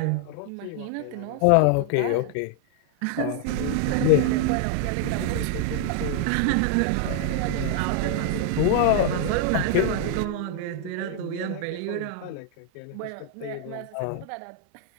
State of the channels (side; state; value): both; different; correlation 0.00